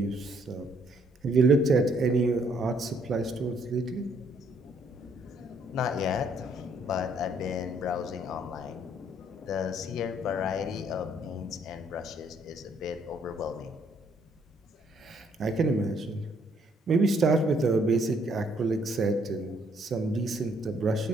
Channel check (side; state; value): both; normal; correlation 0.67